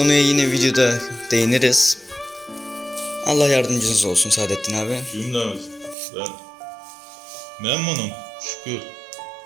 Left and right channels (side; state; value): left; drops out; at 6.0 s